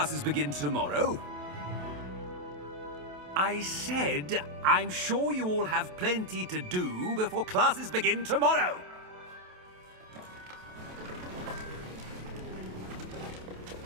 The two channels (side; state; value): left; late; 27 ms